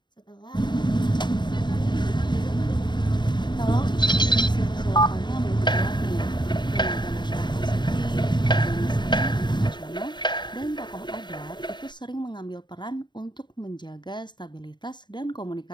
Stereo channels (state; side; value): late; right; 0.22 ms